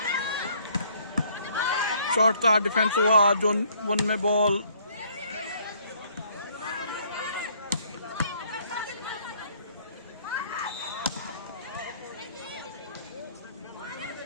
शॉट था, डिफेंस हुआ, जोन 1 में बॉल।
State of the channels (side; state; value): both; inverted; correlation -0.62